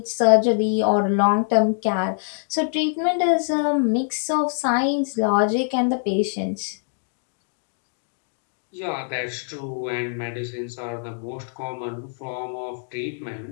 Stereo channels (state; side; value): silent; right; digital silence